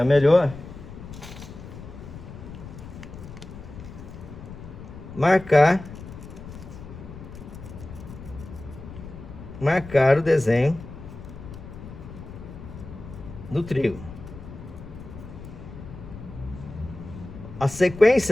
melhor, marcar o desenho do trígono. A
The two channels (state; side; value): noise; left; rumble, 13 dB below the sound